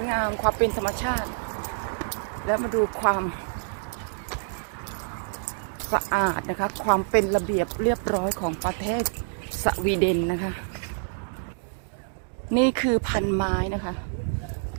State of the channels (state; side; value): silent; left; digital silence